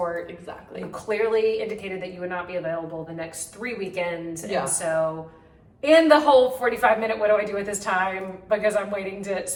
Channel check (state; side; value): identical; both; correlation 1.00